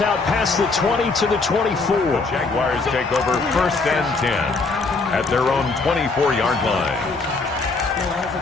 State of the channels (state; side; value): quieter; right; 3.9 dB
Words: out past the 20 to the 24. The Jaguars take over 1st and 10 at their own 24-yard line.